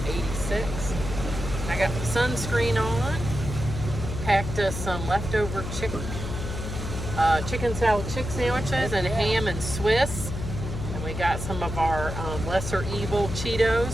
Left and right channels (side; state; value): left; noise; hum, 6 dB below the sound